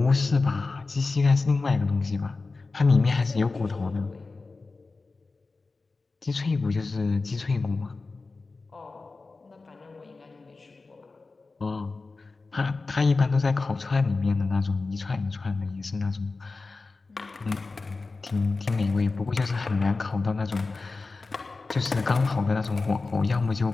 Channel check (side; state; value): right; quieter; 3.8 dB